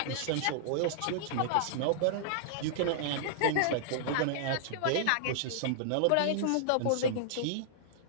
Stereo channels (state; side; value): different; both; correlation -0.01